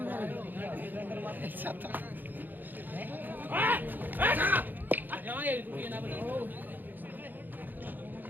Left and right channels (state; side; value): late; left; 0.087 ms